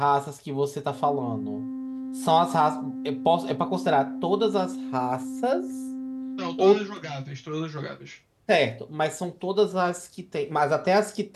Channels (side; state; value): both; identical; correlation 1.00